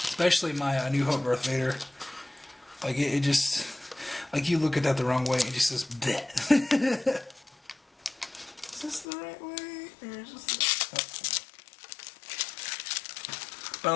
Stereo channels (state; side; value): drops out; right; at 9.1 s